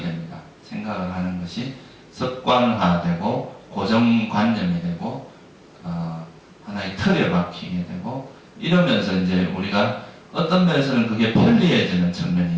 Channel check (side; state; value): both; identical; correlation 1.00